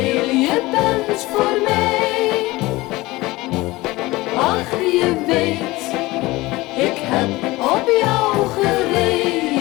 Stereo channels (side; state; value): right; quieter; 20.2 dB